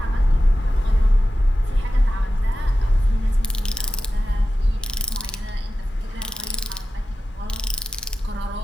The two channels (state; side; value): normal; both; correlation 0.93